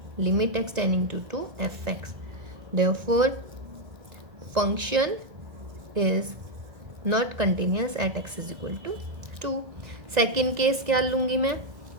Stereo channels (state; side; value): late; left; 1.5 ms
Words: limit x tending to fx। therefore function is not continuous at x is equal to 2। Second case क्या लूँगी मैं?